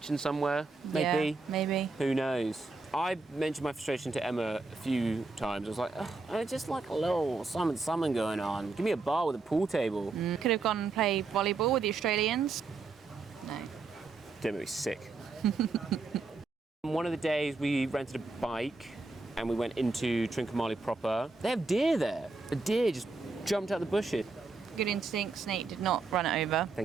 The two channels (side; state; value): left; quieter; 3.8 dB